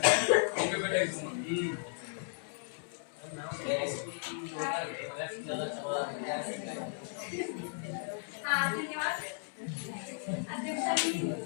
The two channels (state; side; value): silent; right; digital silence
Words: उनके बेटा धन्यवाद अध्यक्षांनी